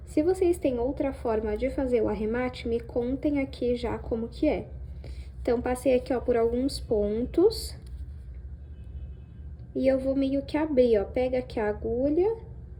Se vocês têm outra forma de fazer o arremate, me contem aqui já como que é. Então, passei aqui, ó, por alguns pontos. E eu vou meio que abrir, ó. Pega aqui a agulha.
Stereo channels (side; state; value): both; identical; correlation 1.00